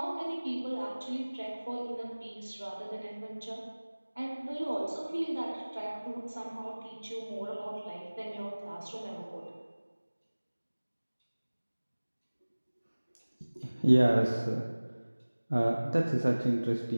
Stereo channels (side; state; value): both; inverted; correlation -1.00